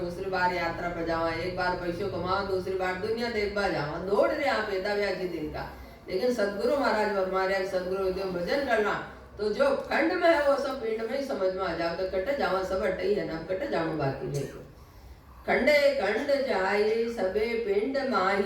बार यात्रा पर जावा, एक बार पैसों कमाओ, दूसरी बार दुनिया देखवा जावा, दौड़ रहे आप एदा व्याजी दिन का। लेकिन सदगुरु महाराज फरमाया, सदगुरु उद्यम भजन करना, तो जो खंड में है वो सब पिंड में ही समझ में आ जाओ, तो कटे जावा सब अटे ही है ना, कटे जाओ बाकी देखो। खंडे खंड जाई सबे पिंड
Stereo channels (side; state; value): both; identical; correlation 1.00